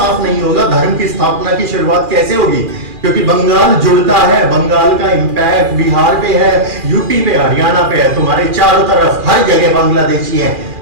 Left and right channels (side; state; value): left; late; 2.4 ms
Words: नहीं होगा, धर्म की स्थापना की शुरुआत कैसे होगी? क्योंकि बंगाल जुड़ता है, बंगाल का इंपैक्ट बिहार पे है, यूपी पे, हरियाणा पे है, तुम्हारे चारों तरफ हर जगह बांग्लादेशी हैं।